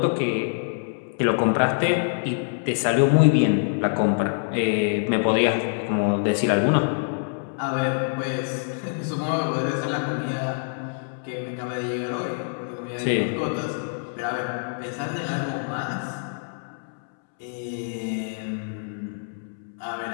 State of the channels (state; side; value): silent; right; 62 dB below the other